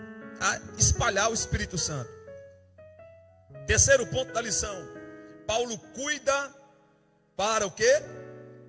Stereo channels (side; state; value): both; identical; correlation 1.00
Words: a espalhar o Espírito Santo. Terceiro ponto da lição. Paulo cuida para o quê?